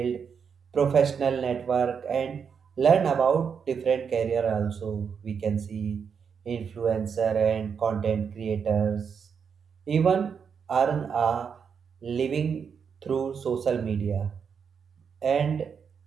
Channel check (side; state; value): left; quieter; 6.6 dB